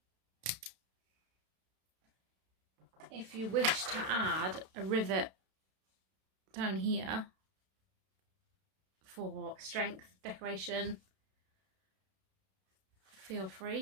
If you wish to add a rivet down here for strength, decoration, feel free,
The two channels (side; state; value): left; late; 32 ms